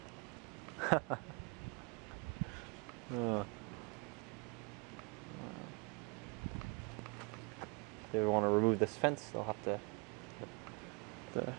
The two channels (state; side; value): quieter; left; 32.3 dB